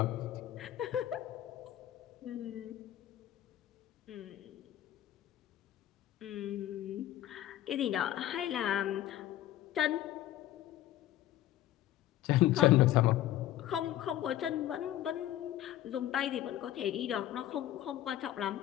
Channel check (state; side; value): quieter; right; 13.2 dB